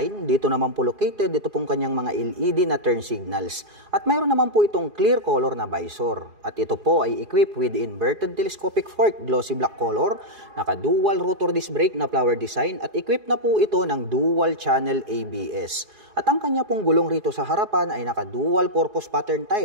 Dito naman po located, dito pong kanyang mga LED na turn signals. At mayroon naman po itong clear color na visor. At ito po ay equipped with inverted telescopic fork, glossy black color, naka-dual rotor disc brake na flower design at equipped na po ito ng dual channel ABS. At ang kanya pong gulong rito sa harapan ay naka-dual purpose pattern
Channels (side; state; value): left; late; 4.8 ms